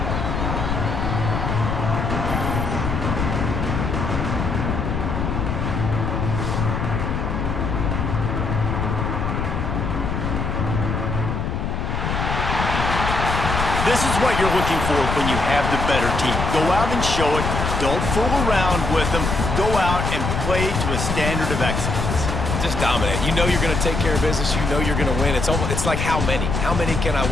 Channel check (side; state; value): left; noise; rumble, 1 dB below the sound